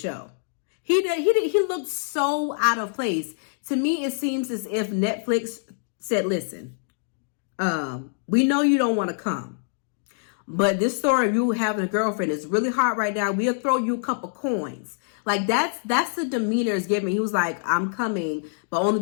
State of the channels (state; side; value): silent; right; digital silence